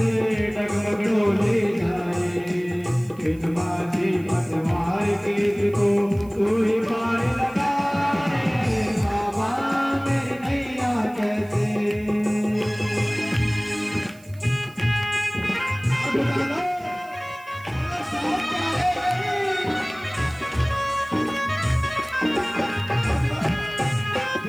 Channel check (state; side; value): noise; right; hiss, 26 dB below the sound